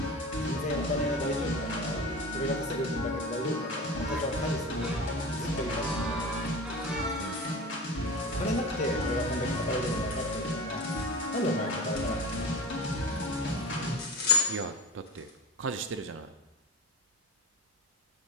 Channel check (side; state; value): both; normal; correlation 0.29